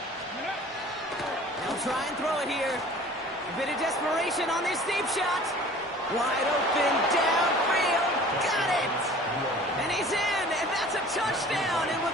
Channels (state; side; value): normal; both; correlation 0.46